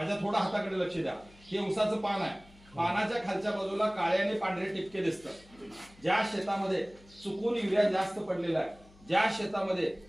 थोडा हाताकडे लक्ष द्या। हे उसाचं पान आहे, पानाच्या खालच्या बाजूला काळे आणि पांढरे टिपके दिसतात। ज्या शेतामध्ये चुकून युरिया जास्त पडलेला आहे, ज्या शेतामध्ये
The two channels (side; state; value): left; noise; hum, 25 dB below the sound